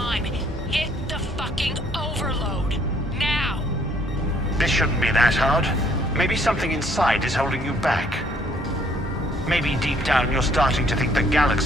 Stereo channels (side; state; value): both; normal; correlation 0.63